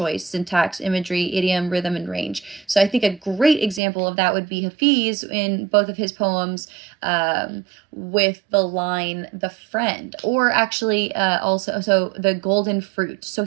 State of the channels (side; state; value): left; drops out; at 3.8 s